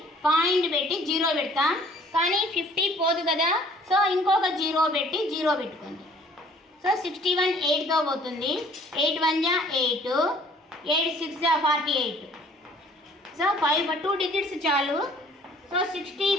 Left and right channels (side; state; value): both; normal; correlation 0.56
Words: పాయింట్ పెట్టి 0 పెడతాం, కానీ 50 పోదు కదా, సో ఇంకొక 0 పెట్టి 0 పెట్టుకోండి. సో 61 8తో పోతుంది, 8 1 జా 8, 8 6 జా 48. సో 2 డిజిట్స్ చాలు. So 60